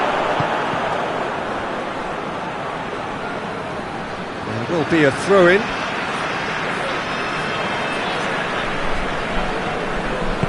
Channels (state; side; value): identical; both; correlation 1.00